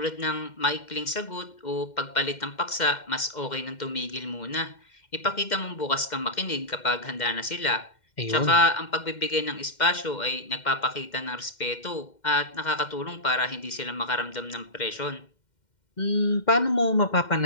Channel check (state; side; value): late; right; 2.1 ms